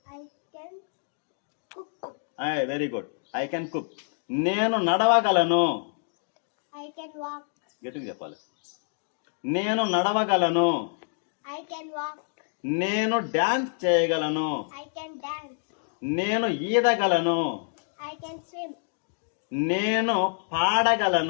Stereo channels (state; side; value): silent; right; digital silence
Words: I can cook. Very good. I can cook. నేను నడవగలను. I can walk. గట్టిగా చెప్పాలి. నేను నడవగలను. I can walk. నేను డాన్స్ చేయగలను. I can dance. నేను ఈదగలను. I can swim. నేను